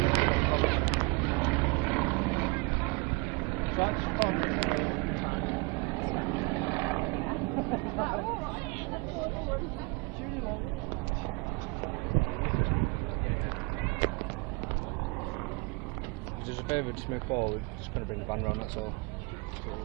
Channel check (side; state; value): left; quieter; 28.3 dB